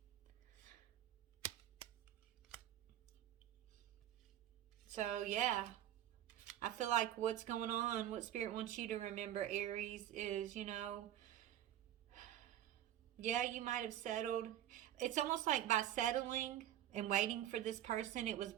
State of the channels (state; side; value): quieter; left; 12.0 dB